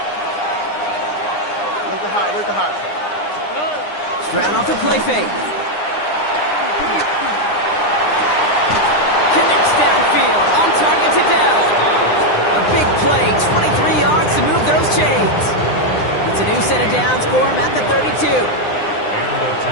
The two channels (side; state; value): right; late; 9.8 ms